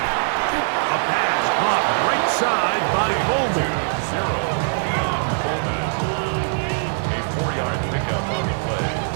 A pass caught right side by Coleman. A 4-yard pickup on the play.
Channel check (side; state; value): left; silent; 64 dB below the other